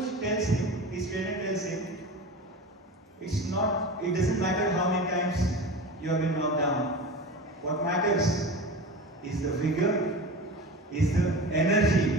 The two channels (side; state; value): both; normal; correlation 0.31